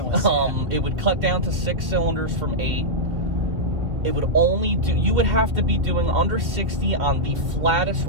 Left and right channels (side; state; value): left; late; 1.7 ms